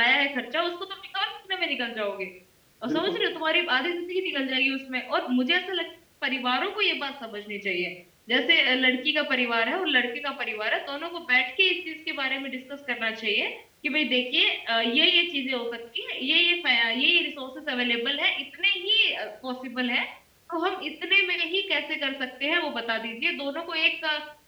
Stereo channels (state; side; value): identical; both; correlation 1.00